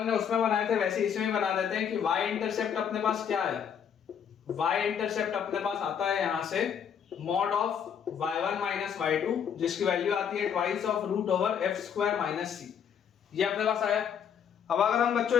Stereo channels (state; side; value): quieter; right; 8.0 dB